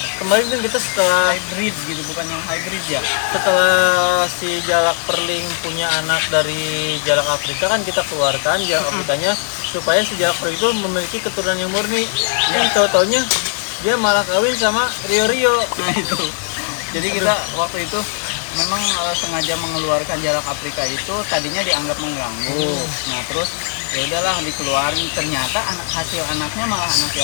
kemarin kan kita setelah hybrid gitu, bukan yang hybrid ya. Setelah si jalak perling punya anak dari jalak Afrika kan kita keluarkan jalak Afrikanya supaya si jalak perling itu memiliki keturunan yang murni. Yang tahu-taunya dia malah kawin sama Rio-Rio. Nah itu. Jadi kita waktu itu memang sengaja mengeluarkan jalak Afrika itu tadinya dianggap mengganggu. Nah terus ya udahlah dikeluarin, ternyata hasil anaknya malah anak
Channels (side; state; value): right; silent; 60 dB below the other